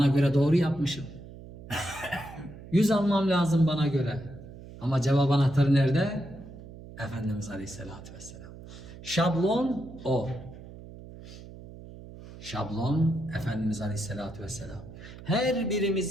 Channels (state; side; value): noise; right; hum, 16 dB below the sound